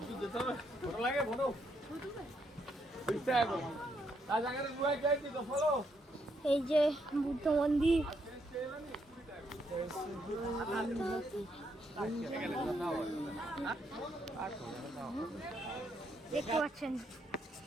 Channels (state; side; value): normal; both; correlation 0.76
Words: এই যে বুদ্ধ মন্দির। দেখতে পাচ্ছেন,